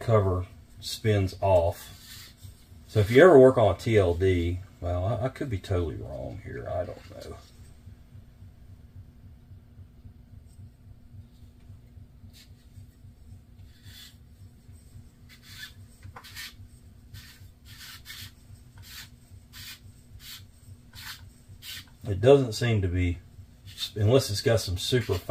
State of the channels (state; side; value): identical; both; correlation 1.00